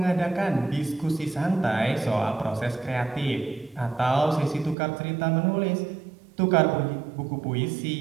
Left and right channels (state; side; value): drops out; left; at 4.8 s